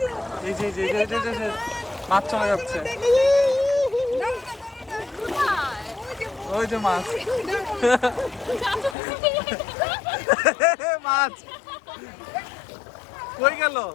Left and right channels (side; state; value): right; drops out; at 9.0 s